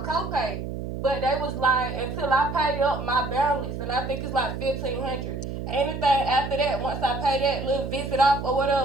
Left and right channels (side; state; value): right; noise; hum, 6 dB below the sound